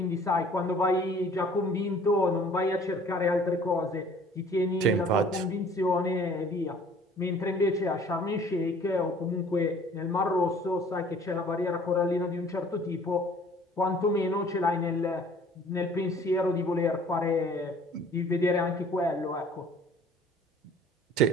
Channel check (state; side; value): normal; both; correlation 0.52